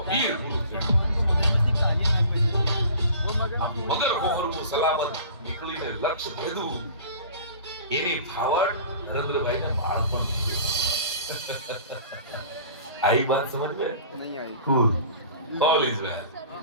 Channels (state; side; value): inverted; both; correlation -0.44